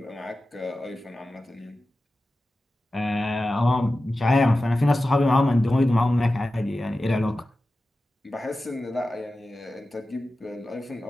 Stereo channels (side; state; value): both; normal; correlation 0.94